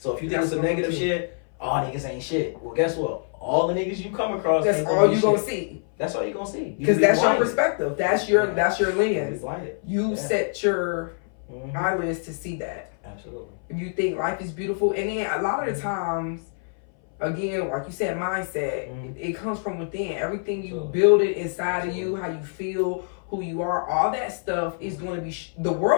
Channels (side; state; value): right; silent; 59 dB below the other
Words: if you think it's a negative shit, all niggas ain't shit. Well, guess what? All the niggas you come across, that's all you gonna see. That's all you gonna see. Because that's your perspective. That's your lens. You set your eyelids to see that. Absolutely. You think life is beautiful, and then a lot of the times, again, like you said, mindset. It comes from within. Everything you build it inside of you, how you feel, who you are, all that stuff is going to be. The